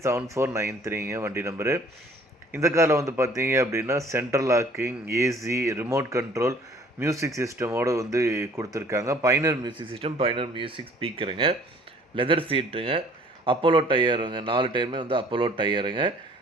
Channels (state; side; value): normal; both; correlation 0.55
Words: வண்டி நம்பரு. இந்த காரில் வந்து பார்த்தீங்க அப்படின்னா central locking, AC, remote control, music சிஸ்டமோடு வந்து கொடுத்துருக்காங்க. Pioneer music system, Pioneer music ஸ்பீக்கருங்க, லெதர் சீட்டுங்க, அப்போலோ டயருங்க. 4 டயருமே வந்து அப்போலோ டயருங்க.